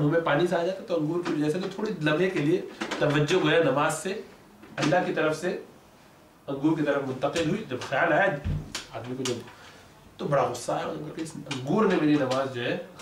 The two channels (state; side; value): identical; both; correlation 1.00